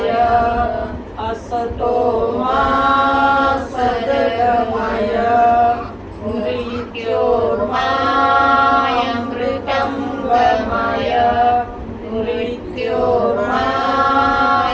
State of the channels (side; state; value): both; identical; correlation 1.00